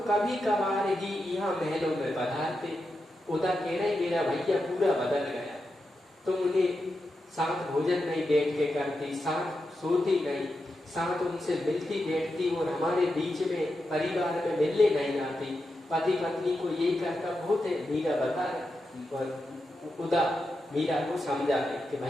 कभी कभार ही यहाँ महलों में पधारते। उदा कह रहे मेरा भैया पूरा बदल गया, तुम उन्हें साथ भोजन नहीं बैठ के करती, साथ सोती नहीं, साथ उनसे मिलती बैठती और हमारे बीच में परिवार में मिलने नहीं आती। पति पत्नी को ये कहता बहुत है। मीरा बता उदा मीरा को समझा कि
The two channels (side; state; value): both; normal; correlation 0.88